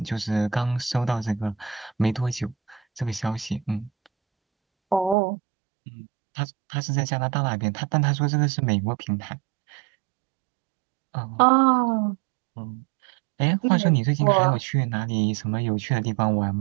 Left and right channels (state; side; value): drops out; left; at 5.2 s